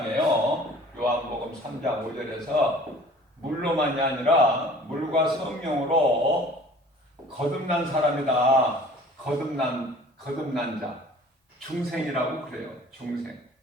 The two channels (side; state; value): both; normal; correlation 0.49